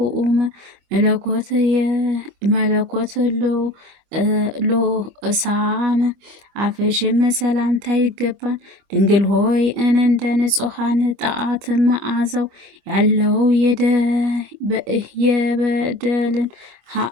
መለኮት ሎእሳም አፍሽም ሰላምታ ይገባን። ድንግል ሆይ እንደ ንጹሐን ጣዓት መዓዛው ያለው የበደልን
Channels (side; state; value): left; late; 25 ms